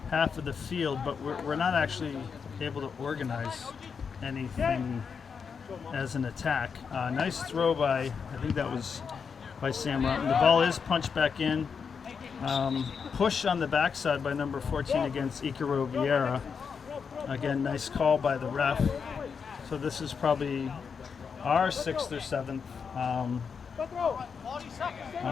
half of the field, but we're not actually able to organize anything as an attack. Nice throw by, I think that was by Sam Rotman. The ball is punched back in. Push on the backside by number 14 against Ikaro Vieira. Again, nice call by the ref. So this is probably our 6th or 7th.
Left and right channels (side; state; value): right; quieter; 6.1 dB